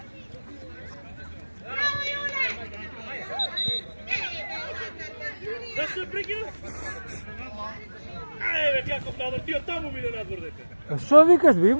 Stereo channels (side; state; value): both; inverted; correlation -1.00